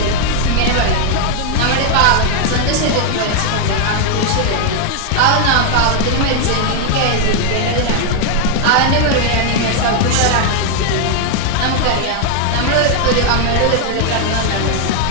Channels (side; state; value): both; different; correlation 0.00